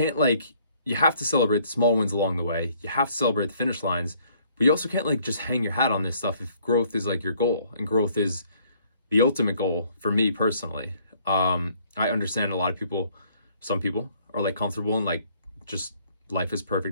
like, you have to celebrate the small wins along the way. You have to celebrate the finish lines, but you also can't like just hang your hat on this stuff if growth is like your goal, and growth is the ultimate goal for me personally. I understand a lot of people, some people are like comfortable and like just life is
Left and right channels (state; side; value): inverted; both; correlation -0.62